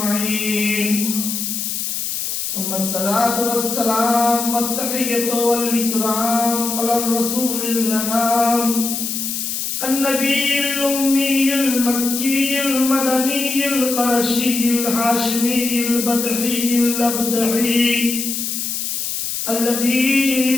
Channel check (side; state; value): left; noise; hiss, 3 dB below the sound